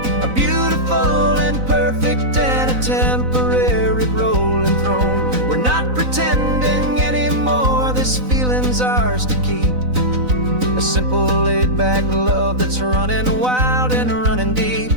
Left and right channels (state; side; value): late; left; 4.0 ms